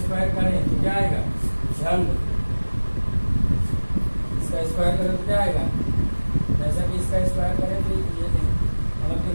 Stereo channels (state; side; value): inverted; both; correlation -1.00